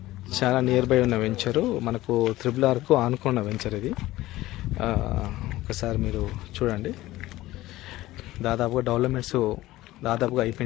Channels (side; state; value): right; quieter; 16.9 dB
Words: చాలా నియర్ బై ఉన్న వెంచరు, మనకు త్రిబుల్-ఆర్కు ఆనుకున్న వెంచర్ ఇది. ఒకసారి మీరు చూడండి. దాదాపుగా డెవలప్మెంట్స్ దాదాపుగా